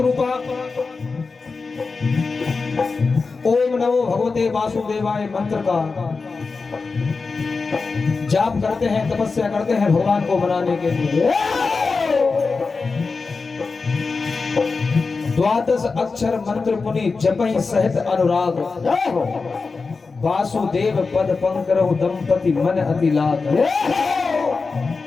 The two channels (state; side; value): quieter; right; 4.4 dB